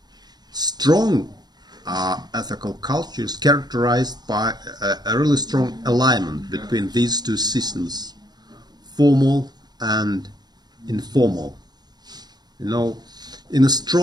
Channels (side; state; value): left; late; 0.20 ms